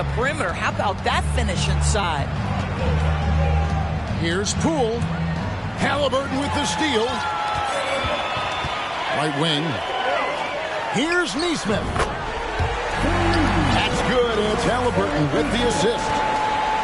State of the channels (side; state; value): both; identical; correlation 1.00